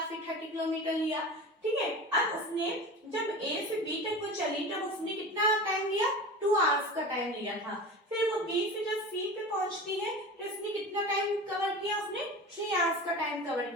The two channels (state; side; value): normal; both; correlation 0.32